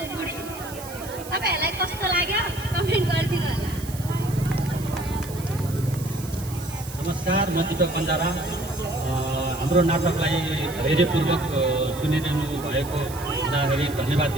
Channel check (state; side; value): noise; right; hiss, 15 dB below the sound